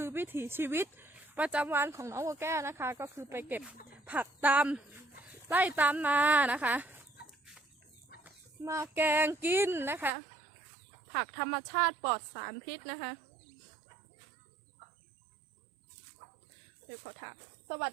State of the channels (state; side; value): drops out; left; at 10.1 s